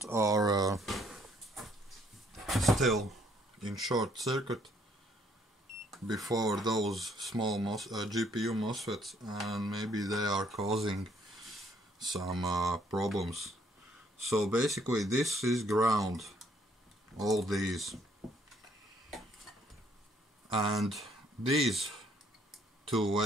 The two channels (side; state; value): both; normal; correlation 0.66